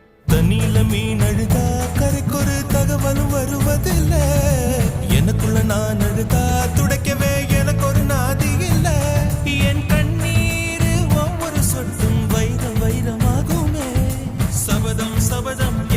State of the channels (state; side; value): identical; both; correlation 1.00